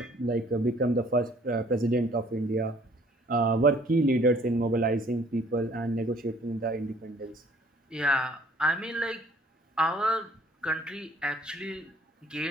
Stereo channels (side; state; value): both; normal; correlation 0.58